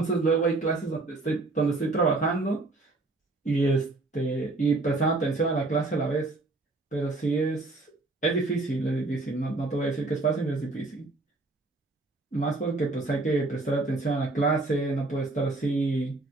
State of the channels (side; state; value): left; quieter; 3.2 dB